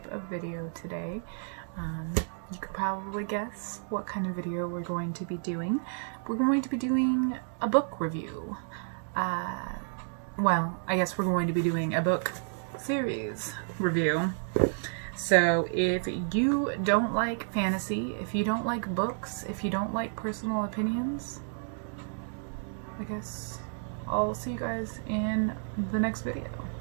of video today. You could probably guess what kind of video we're going to be doing. We're going to be doing a book review. Well, I guess we're going to be doing a book series review. So if you don't like fantasy, if you don't like books, if you don't like personal opinions, I guess I'll see you guys in the next video.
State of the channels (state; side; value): silent; left; digital silence